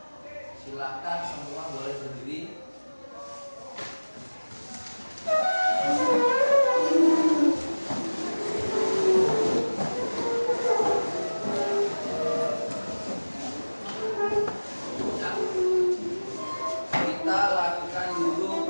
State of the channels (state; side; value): inverted; both; correlation -1.00